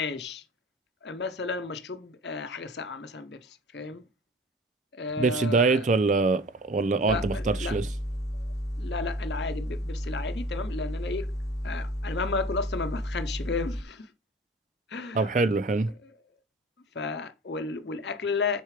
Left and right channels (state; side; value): normal; both; correlation 0.43